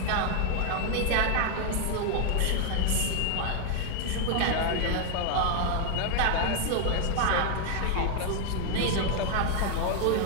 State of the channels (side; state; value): both; different; correlation 0.00